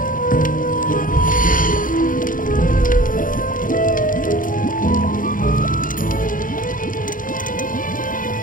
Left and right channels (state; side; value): late; right; 0.39 ms